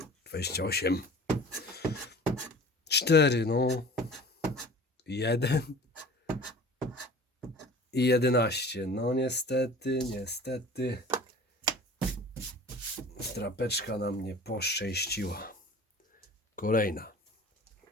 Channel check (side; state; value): both; normal; correlation 0.43